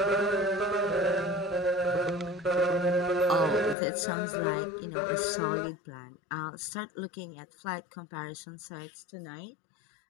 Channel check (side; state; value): right; drops out; at 3.8 s